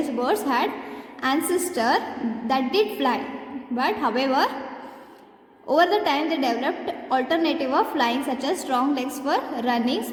birds had ancestor that did fly, but however, over the time they developed alternative of flying, such as strong legs for running,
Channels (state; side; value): identical; both; correlation 1.00